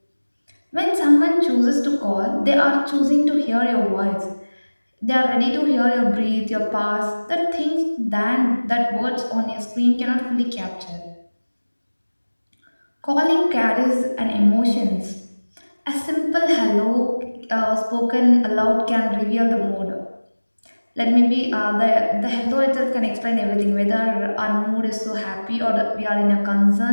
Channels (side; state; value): both; inverted; correlation -1.00